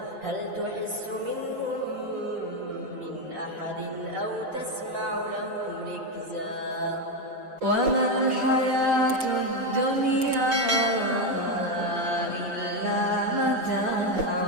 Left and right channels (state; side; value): late; left; 6.7 ms